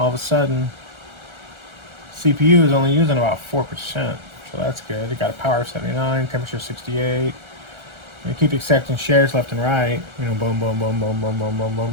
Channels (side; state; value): left; late; 1.3 ms